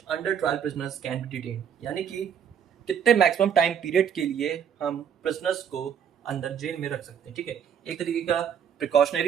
trial prisoners can be detain, यानी कि कितने मैक्सिमम टाइम पीरियड के लिए हम प्रिजनर्स को अंदर जेल में रख सकते हैं। ठीक है, एक तरीके का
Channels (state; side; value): quieter; left; 8.1 dB